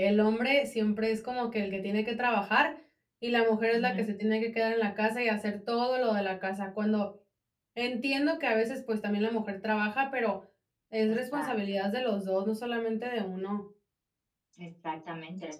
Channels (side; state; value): both; identical; correlation 1.00